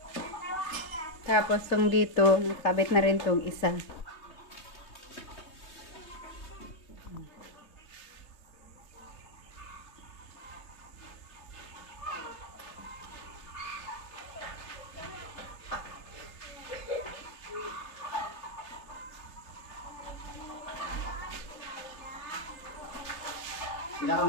Tapos tong dito, nakabit na rin tong isa. Pila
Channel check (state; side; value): late; right; 3.1 ms